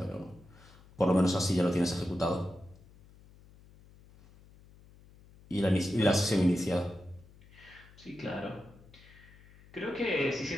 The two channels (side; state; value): left; noise; hum, 24 dB below the sound